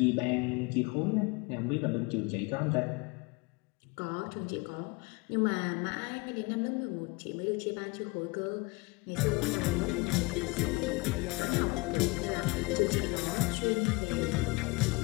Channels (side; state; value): right; quieter; 25.9 dB